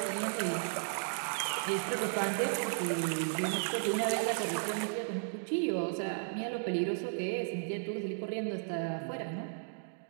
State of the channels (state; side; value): silent; left; digital silence